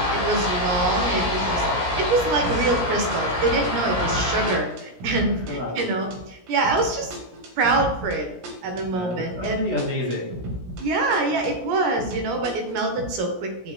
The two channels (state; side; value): late; left; 17 ms